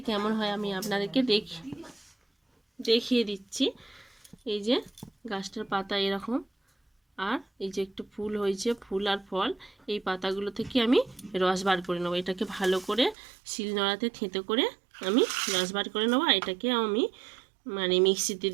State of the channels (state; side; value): drops out; left; at 13.2 s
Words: কেমন হয় আমি আপনাদেরকে দেখিয়ে দিচ্ছি। এই যে গাছটার পাতা এরকম, আর এই যে একটু ফুল হয়েছে, ফুল আর ফল। এই পাতাগুলো থেকে আমি রস বার করে নেবো। এটাকে ভালো করে শিলনোড়াতে থেঁতো করে আমি রস বার করে নেবো। আর এটাকে আমি মিক্সিতে